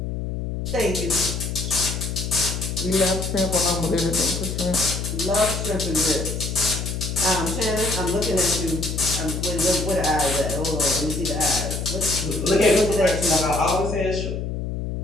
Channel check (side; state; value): left; noise; hum, 4 dB below the sound